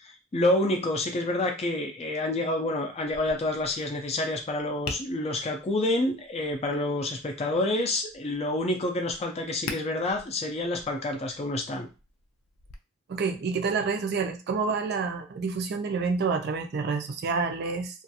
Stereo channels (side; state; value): both; normal; correlation 0.38